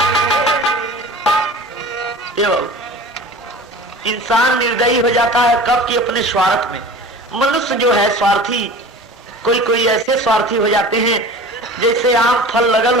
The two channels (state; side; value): normal; both; correlation 0.39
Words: इंसान निर्दयी हो जाता है कब कि अपने स्वार्थ में। मनुष्य जो है स्वार्थी, कोई ऐसे स्वार्थी हो जाते हैं जैसे आम फल लगल